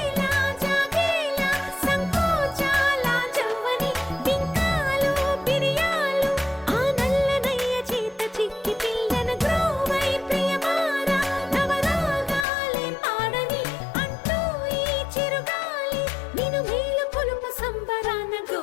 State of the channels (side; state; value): right; drops out; at 12.5 s